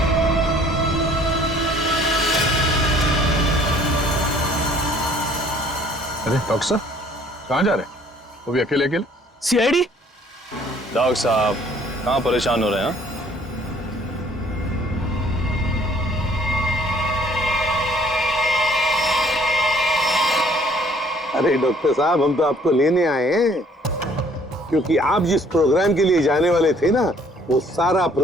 अरे डॉक्टर साहब, कहाँ जा रहे हैं? वो भी अकेले अकेले? सीआईडी? डॉक्टर साहब कहाँ परेशान हो रहे हैं? अरे डॉक्टर साहब, हम तो आपको लेने आए हैं, क्योंकि आप जिस प्रोग्राम के लिए जाने वाले थे ना, वो सारा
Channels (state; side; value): normal; both; correlation 0.58